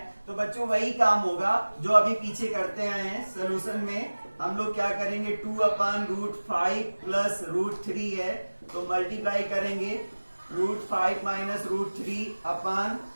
तो बच्चों वही काम होगा जो अभी पीछे करते आए हैं। सोल्यूशन में हम लोग क्या करेंगे, 2 अपान √5 प्लस √3 है तो मल्टीप्लाई करेंगे √5 माइनस √3 अपान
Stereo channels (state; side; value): inverted; both; correlation -1.00